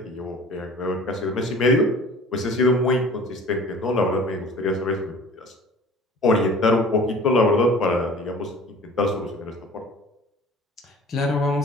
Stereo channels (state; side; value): normal; both; correlation 0.45